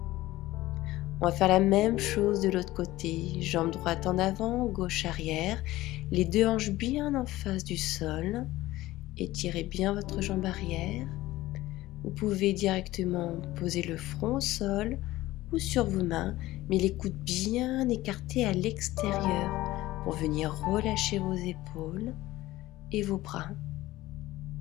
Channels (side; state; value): right; quieter; 17.1 dB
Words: On va faire la même chose de l'autre côté. Jambe droite en avant, gauche arrière. Les deux hanches bien en face du sol. Étirez bien votre jambe arrière. Vous pouvez directement poser le front au sol ou sur vos mains, mais les coudes bien écartés à l'extérieur pour venir relâcher vos épaules et vos bras